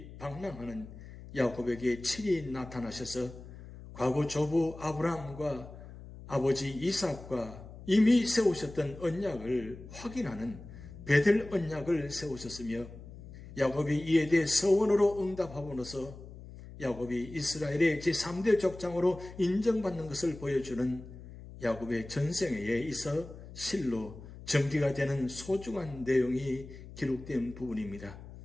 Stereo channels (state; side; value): noise; left; hum, 15 dB below the sound